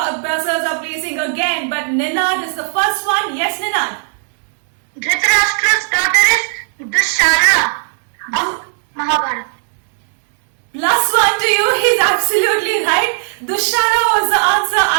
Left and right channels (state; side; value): silent; left; digital silence